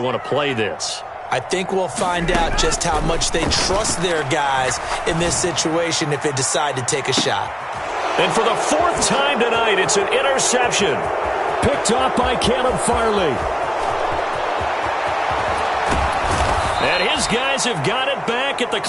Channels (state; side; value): identical; both; correlation 1.00